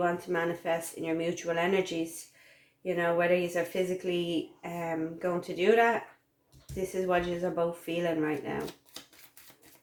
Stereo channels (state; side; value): identical; both; correlation 1.00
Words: to manifest in your mutual energies. You know, whether you are physically going to do that, this is what you are both feeling right now.